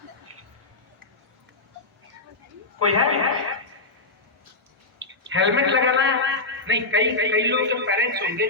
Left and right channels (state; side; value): quieter; right; 3.1 dB